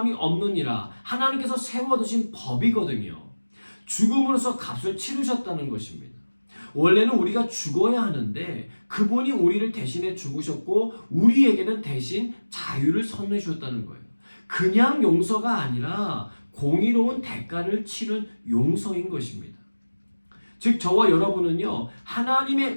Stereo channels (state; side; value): inverted; both; correlation -1.00